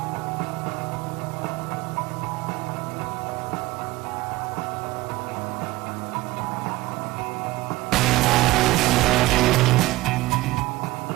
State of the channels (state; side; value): quieter; left; 18.9 dB